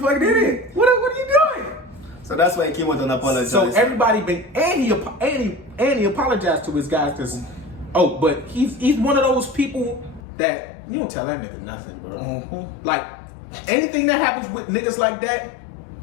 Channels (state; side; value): drops out; right; at 10.2 s